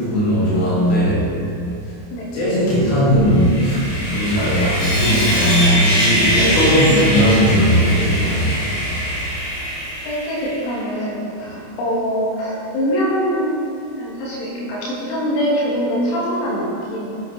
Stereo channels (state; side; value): late; right; 29 ms